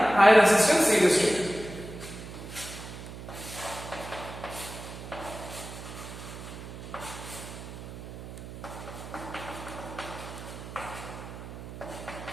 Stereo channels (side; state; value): right; noise; hum, 11 dB below the sound